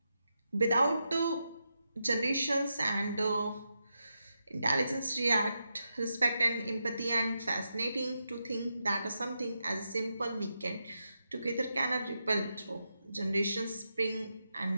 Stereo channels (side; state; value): both; inverted; correlation -0.86